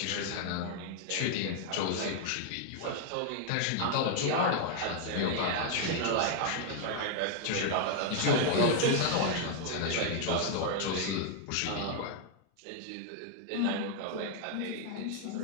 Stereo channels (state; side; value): different; both; correlation 0.00